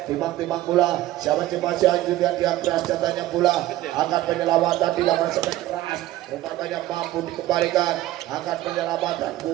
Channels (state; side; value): quieter; left; 15.1 dB